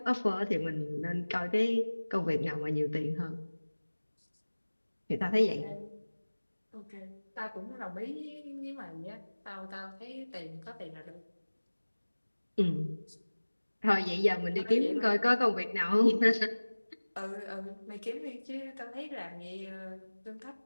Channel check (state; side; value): inverted; both; correlation -1.00